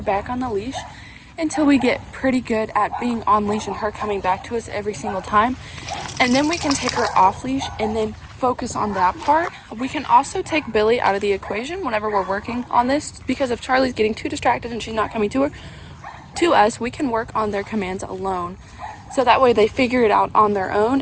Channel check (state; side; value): identical; both; correlation 1.00